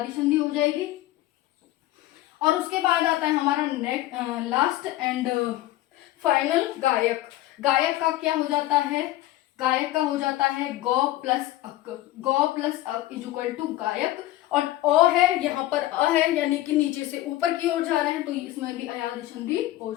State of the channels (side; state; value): right; quieter; 15.7 dB